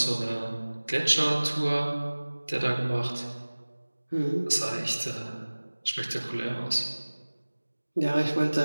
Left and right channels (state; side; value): inverted; both; correlation -1.00